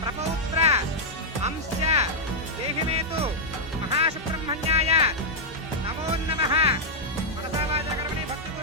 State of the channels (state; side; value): normal; both; correlation -0.06